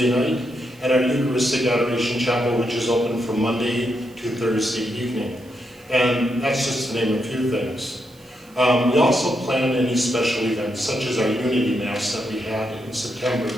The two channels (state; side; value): noise; right; hiss, 28 dB below the sound